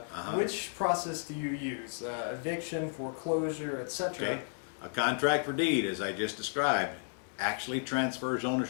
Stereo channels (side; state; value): right; silent; digital silence